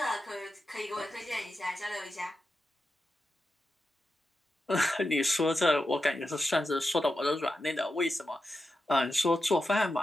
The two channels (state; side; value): normal; both; correlation 0.89